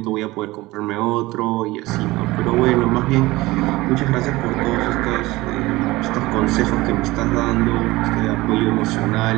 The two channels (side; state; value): left; quieter; 19.7 dB